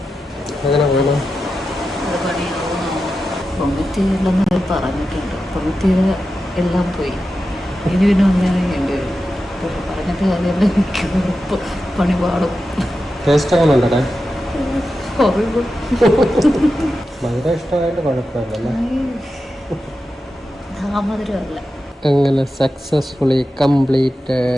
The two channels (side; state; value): both; normal; correlation 0.91